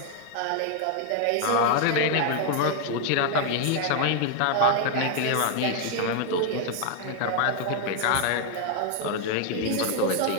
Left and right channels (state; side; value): different; both; correlation 0.00